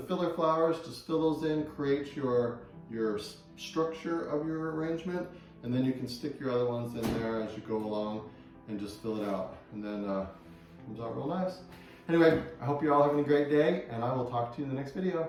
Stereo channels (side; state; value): both; identical; correlation 1.00